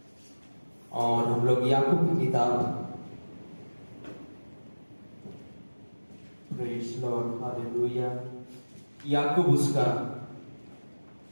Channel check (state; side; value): inverted; both; correlation -1.00